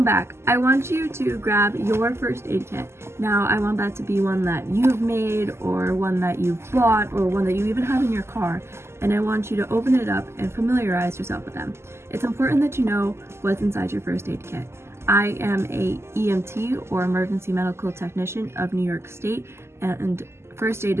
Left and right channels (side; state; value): left; late; 0.12 ms